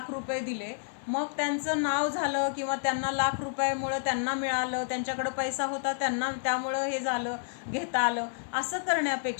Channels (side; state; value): right; silent; digital silence